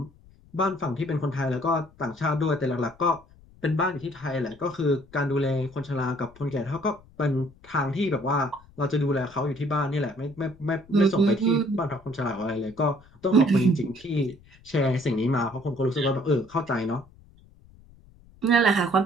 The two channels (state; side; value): noise; left; rumble, 26 dB below the sound